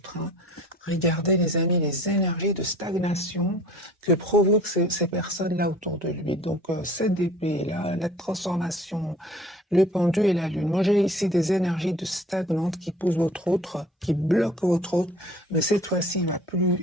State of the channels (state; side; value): normal; both; correlation 0.47